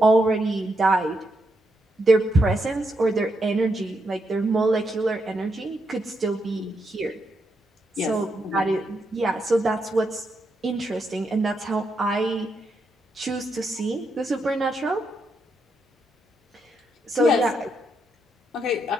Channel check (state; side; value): normal; both; correlation 0.81